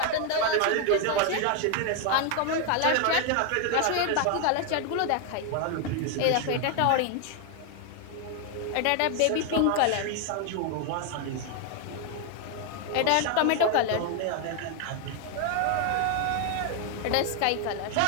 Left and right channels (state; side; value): different; both; correlation 0.01